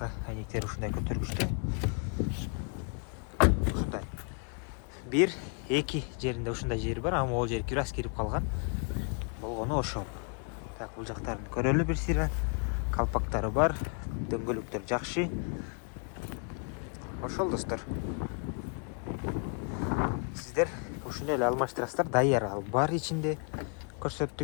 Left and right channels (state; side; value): quieter; right; 39.4 dB